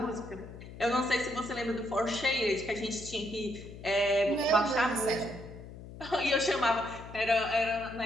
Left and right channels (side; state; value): left; noise; hum, 14 dB below the sound